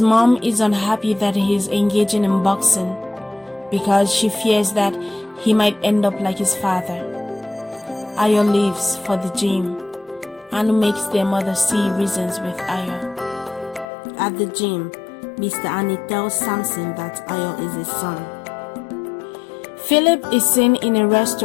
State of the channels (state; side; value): drops out; right; at 13.9 s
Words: mom is unhappy that he is engaging in boxing because she fears that he might end up like his father. Ayo leaves for the gym. Anu makes their mother see reasons with Ayo. At the gym, Mr. Annie tells Samson that Ayo is his son. Philip is seen in a